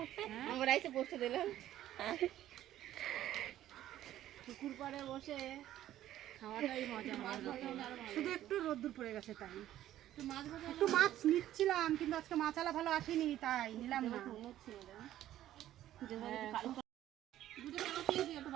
আমরা এসে বসে দিলাম পুকুর পাড়ে বসে খাওয়াটাই মজা শুধু একটু রোদ্দুর পড়ে গেছে তাই একটু মাছ নিচ্ছিলাম, কিন্তু আজকে মাছালা ভালো আসেনি তাই নিলাম না।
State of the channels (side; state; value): left; quieter; 12.9 dB